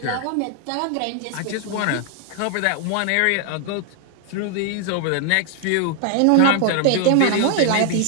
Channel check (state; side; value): different; both; correlation 0.00